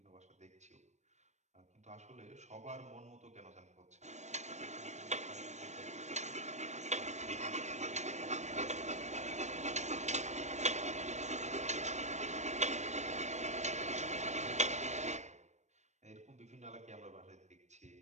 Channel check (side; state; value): left; late; 0.34 ms